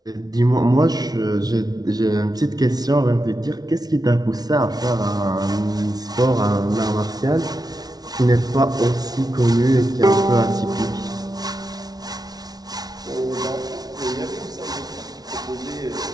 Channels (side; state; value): left; late; 0.19 ms